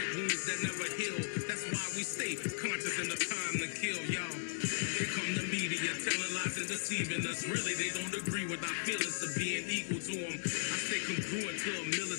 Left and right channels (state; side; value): silent; right; digital silence